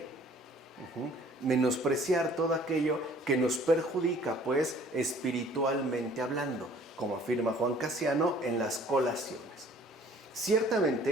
Menospreciar todo aquello que nos perjudica, pues, espiritualmente hablando, como afirma Juan Casiano en las Colaciones.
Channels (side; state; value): both; normal; correlation 0.54